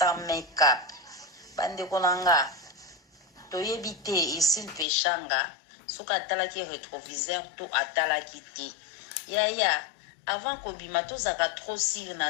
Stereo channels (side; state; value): right; drops out; at 4.9 s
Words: make-up. Bande konanga toyebi te Xil Pechanga soki atalaki rétroviseur to atalaki te yaya avant kobima tozaka trop sire